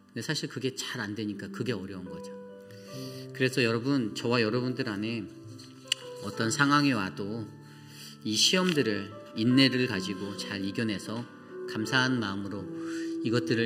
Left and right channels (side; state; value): both; identical; correlation 1.00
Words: 근데 사실 그게 잘 안 되니까 그게 어려운 거죠. 그래서 여러분, 저와 여러분들 안에 어떤 상황이 와도 이 시험들을, 인내를 가지고 잘 이겨내서 감사한 마음으로